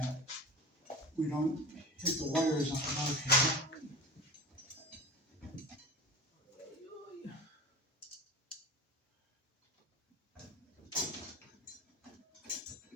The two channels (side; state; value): both; normal; correlation 0.33